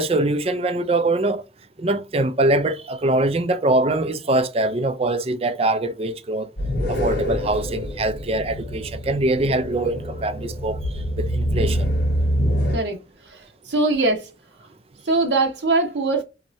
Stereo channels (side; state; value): both; normal; correlation 0.36